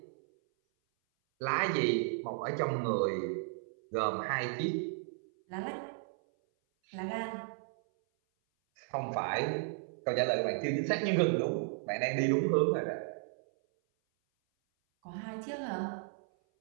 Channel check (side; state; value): left; silent; 55 dB below the other